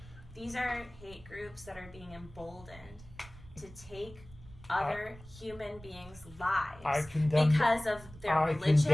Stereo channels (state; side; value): noise; right; rumble, 19 dB below the sound